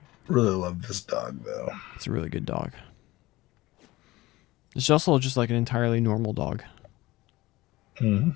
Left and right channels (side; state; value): right; quieter; 19.1 dB